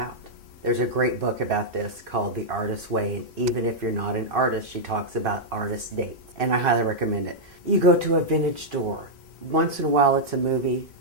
There's a great book about this called The Artist's Way, and even if you're not an artist, she talks about artist dates, and I highly recommend it. You go to a vintage store. Once in a while it's a movie,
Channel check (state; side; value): normal; both; correlation -0.06